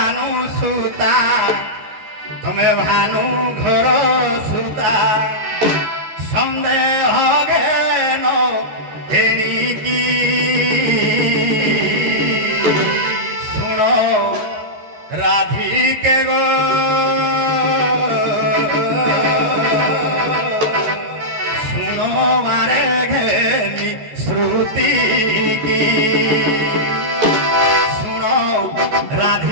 সুতা তুমি ভানু ঘর সুতা সন্দেহ জ্ঞান এণিকি শুণ রাধিকে গো শুণ মারে ঘেনি শ্রুতি কি শুণ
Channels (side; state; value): left; late; 14 ms